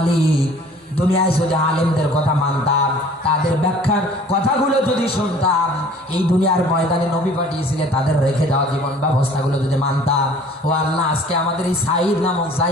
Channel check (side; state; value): both; normal; correlation 0.51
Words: দুনিয়ায় যদি আলেমদের কথা মানতাম, তাদের ব্যাখ্যার কথাগুলো যদি শুনতাম, এই দুনিয়ার ময়দানে নবী পাঠিয়েছিলেন তাদের রেখে যাওয়া জীবন ব্যবস্থাগুলো যদি মানতাম, ও আল্লাহ আজকে আমাদের এই সাইদ নামক